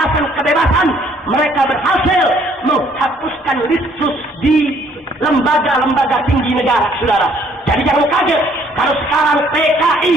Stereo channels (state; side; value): normal; both; correlation 0.63